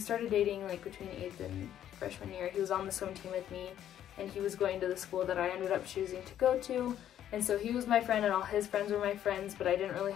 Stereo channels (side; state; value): right; quieter; 10.9 dB